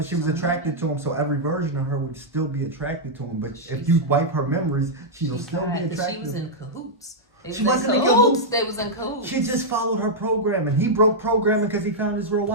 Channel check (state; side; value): normal; both; correlation -0.06